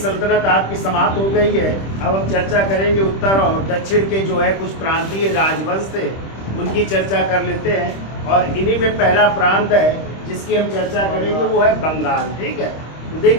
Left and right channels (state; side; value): late; right; 26 ms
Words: आपकी समाप्त हो गई है। अब हम चर्चा करेंगे उत्तर और दक्षिण के जो है कुछ प्रांतीय राजवंश थे, उनकी चर्चा कर लेते हैं। और इन्हीं में पहला प्रांत है जिसकी हम चर्चा करेंगे, वो है बंगाल। ठीक है, तो